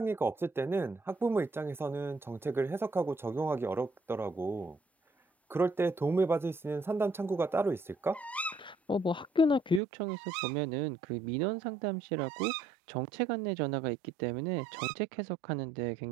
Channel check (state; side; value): drops out; left; at 9.8 s